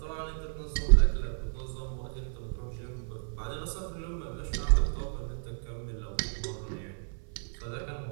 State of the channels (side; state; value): left; silent; 56 dB below the other